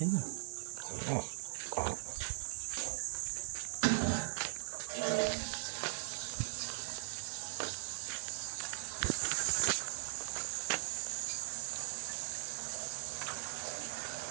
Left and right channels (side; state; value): left; silent; digital silence